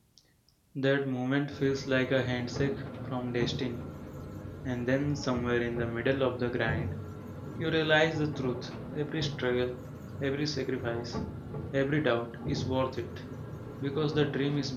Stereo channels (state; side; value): identical; both; correlation 1.00